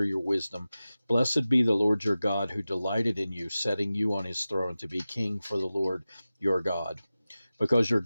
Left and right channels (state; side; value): inverted; both; correlation -0.95